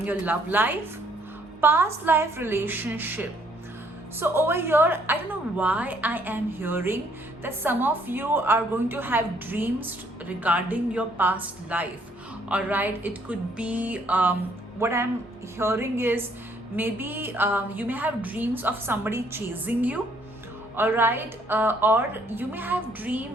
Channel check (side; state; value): both; normal; correlation 0.66